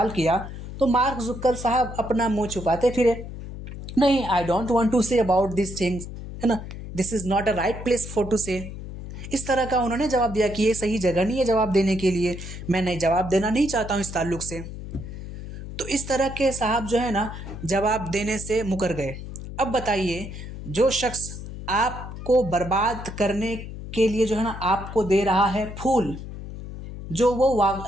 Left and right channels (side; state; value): left; noise; hum, 10 dB below the sound